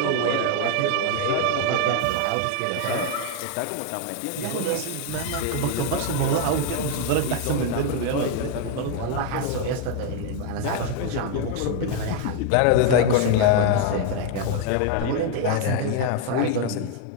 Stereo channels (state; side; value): different; both; correlation 0.00